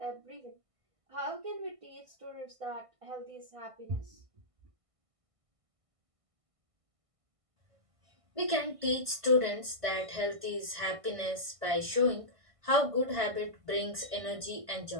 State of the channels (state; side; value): late; left; 1.5 ms